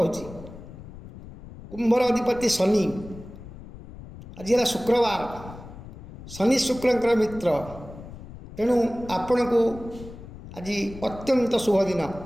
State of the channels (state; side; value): noise; left; rumble, 15 dB below the sound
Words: कुंभर अधिपति शनि। आज है शुक्रवार। शनि शुक्रंकर मित्र, तेणु आपण को आज अत्यंत शुभ दिन।